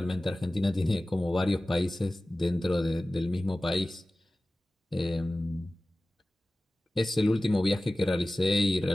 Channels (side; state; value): both; normal; correlation 0.97